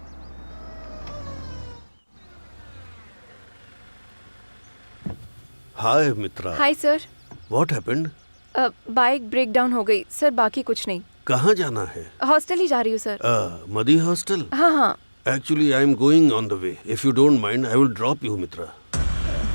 Hi Mitra. Hi sir. What happened? Bike break down हो गई सर, बाकी कुछ नहीं। कहाँ जाना है? हॉस्टल ही जा रही हूँ सर। मदी हॉस्टल? हाँ हाँ। Actually, I am going on the way. If you don't mind, I will drop you, Mitra.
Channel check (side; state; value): both; inverted; correlation -1.00